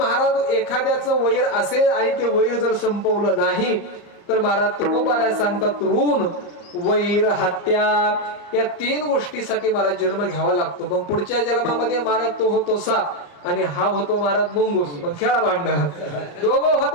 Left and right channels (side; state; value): right; late; 34 ms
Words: एखाद्याचं वैर असेल आणि ते वैर जर संपवलं नाही तर महाराज तुकोबा सांगतात ऋण, वैर, हत्या या 3 गोष्टीसाठी महाराज जन्म घ्यावा लागतो. मग पुढच्या जन्मामध्ये महाराज तो होतो साप आणि हा होतो महाराज मुंगूस. मग खेळा भांडणं, दोघं